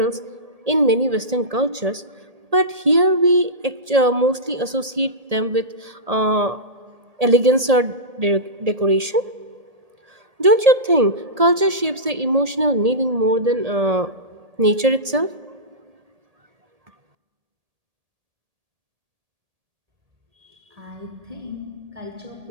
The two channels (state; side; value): late; left; 1.8 ms